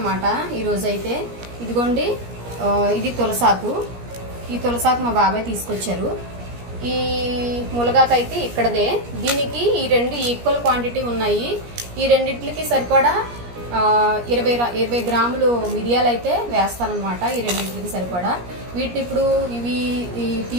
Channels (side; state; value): left; late; 17 ms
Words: ఈరోజు అయితే ఇదిగోండి, ఇది తులసాకు. ఈ తులసాకు మా బాబాయ్ తీసుకొచ్చారు. ఈ ములగాకు అయితే ఇక్కడదే. దీనికి ఈ రెండు ఈక్వల్ క్వాంటిటీ ఉన్నాయి. ఈ రెండింటికి సరిపడా 20 గ్రాములు మిరియాలు అయితే వేస్తానమాట. ఈ రెండింటికి సరిపడా. వీటిని ఇప్పుడు ఇవి